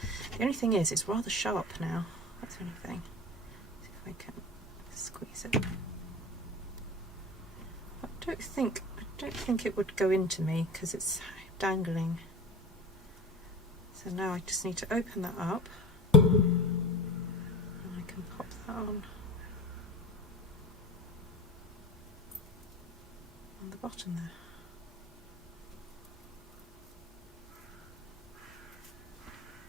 The only thing is it's rather sharp now. That's the only thing. See if I can squeeze it. I don't think it would go into me because it's dangling. So now I just need to open that up and I can pop that on the bottom there.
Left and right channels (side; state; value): both; normal; correlation 0.32